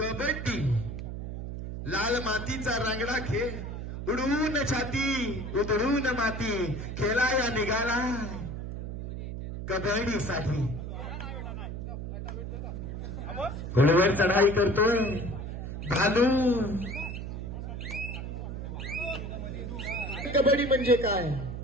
लाल मातीचा रांगडा खेळ, उडवून छाती उधळून माती, खेळाया निघाला कबड्डीसाठी. घोड्यावर चढाई करतोय भालू. कबड्डी म्हणजे काय?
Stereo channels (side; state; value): right; noise; hum, 6 dB below the sound